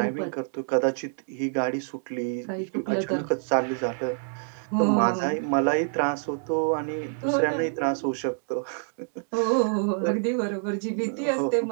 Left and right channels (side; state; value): left; silent; digital silence